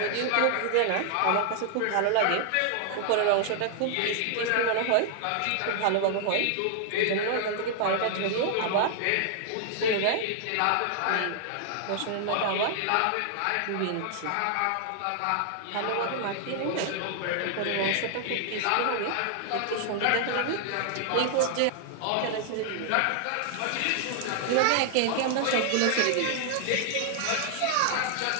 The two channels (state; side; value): different; both; correlation 0.00